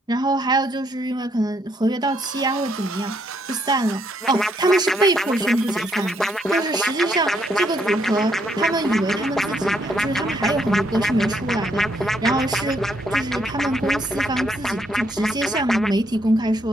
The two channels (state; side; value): normal; both; correlation 0.73